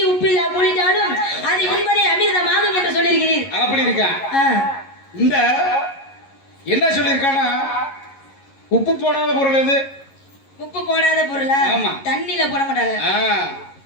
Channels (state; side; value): late; right; 11 ms